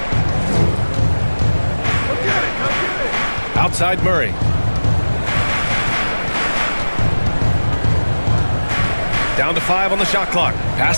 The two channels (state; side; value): inverted; both; correlation -1.00